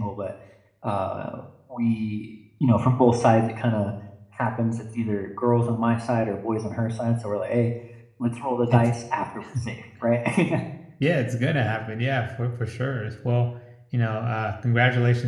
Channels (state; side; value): identical; both; correlation 1.00